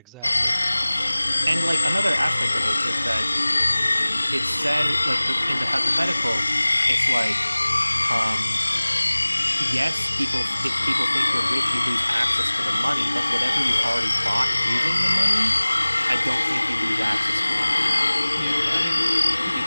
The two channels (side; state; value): both; inverted; correlation -0.99